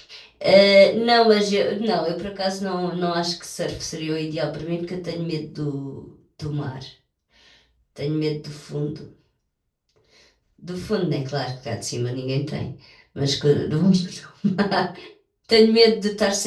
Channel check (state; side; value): identical; both; correlation 1.00